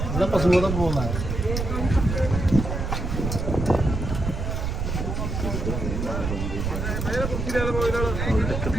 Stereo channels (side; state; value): right; noise; rumble, 3 dB below the sound